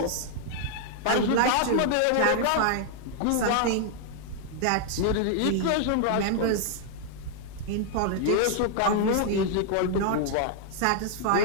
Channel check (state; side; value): different; both; correlation 0.00